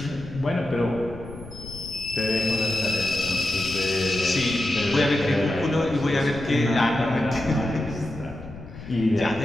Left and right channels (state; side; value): noise; left; rumble, 14 dB below the sound